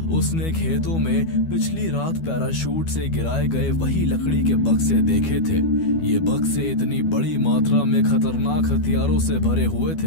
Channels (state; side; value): late; right; 12 ms